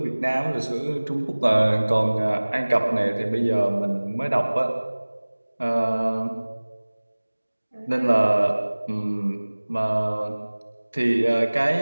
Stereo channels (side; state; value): both; inverted; correlation -1.00